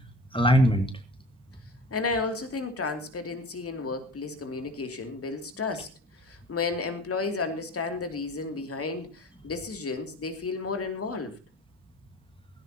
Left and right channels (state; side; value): normal; both; correlation 0.39